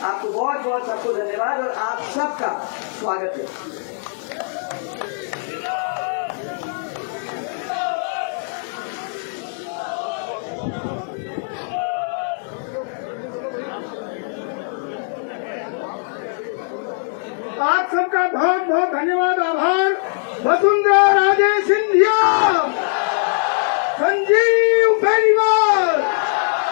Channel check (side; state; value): right; silent; digital silence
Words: आपको बहुत बहुत सबको धन्यवाद और आप सबका स्वागत है। आप सबका बहुत बहुत धन्यवाद, आभार। वसुंधरा राजे सिंधिया, संजीव बेनीवाल,